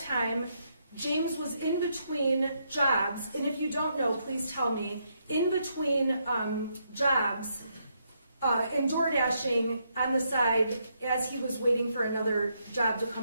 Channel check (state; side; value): inverted; both; correlation -0.77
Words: James was in between jobs, and if you don't know, please tell me, in between jobs and door dashing on the side as he was waiting for another job to